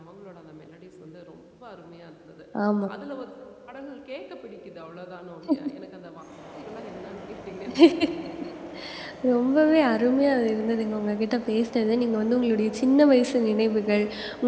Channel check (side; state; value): both; identical; correlation 1.00